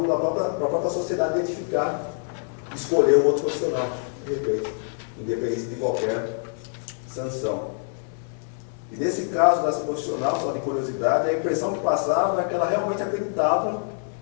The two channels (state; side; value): silent; right; digital silence